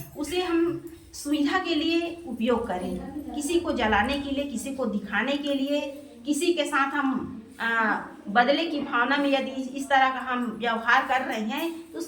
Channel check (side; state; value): both; identical; correlation 1.00